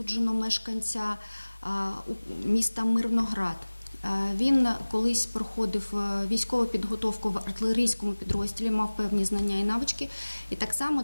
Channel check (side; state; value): both; inverted; correlation -1.00